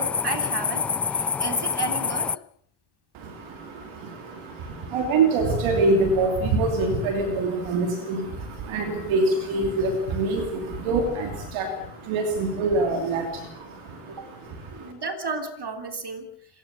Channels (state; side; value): normal; both; correlation 0.02